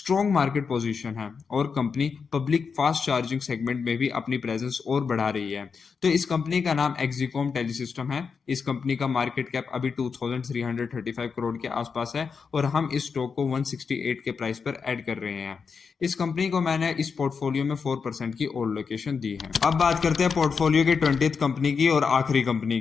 मार्केट पोजीशन है और company public fast charging segment में भी अपनी प्रेजेंस और बढ़ा रही है। तो इस कंपनी का नाम एक्सिकॉम टेलीसिस्टम है। इस कंपनी का मार्केट कैप अभी 2335 करोड़ के आसपास है और हम इस स्टॉक को 168 के प्राइस पर ऐड कर रहे हैं। इस कंपनी को मैंने इस पोर्टफोलियो में 4% की ओल्ड लोकेशन दी है। अब बात करते हैं पोर्टफोलियो की 20th कंपनी की और आखिरी कंपनी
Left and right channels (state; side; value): quieter; right; 5.6 dB